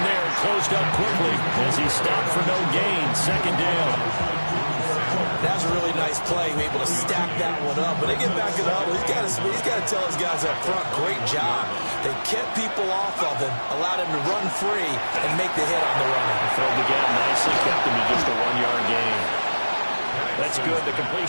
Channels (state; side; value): inverted; both; correlation -1.00